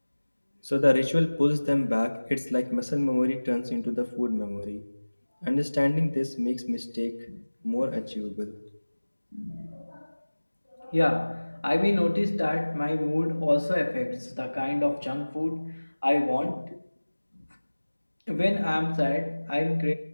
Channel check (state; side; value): inverted; both; correlation -1.00